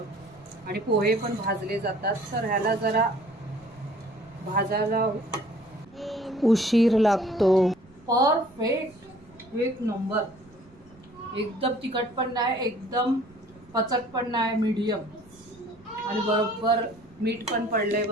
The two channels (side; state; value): right; noise; rumble, 26 dB below the sound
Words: आणि पोहे पण भाजले जातात. तर ह्याला जरा भाजायला उशीर लागतो. परफेक्ट, एक नंबर. एकदम तिखट पण नाही, एकदम पचट पण नाही, मीडियम. आणि बरोबर मीठ पण पडलंय,